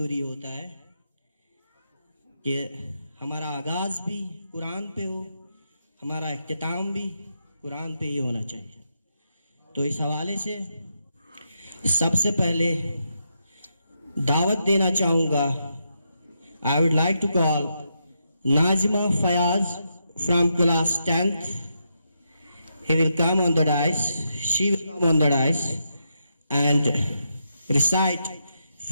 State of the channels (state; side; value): inverted; both; correlation -0.82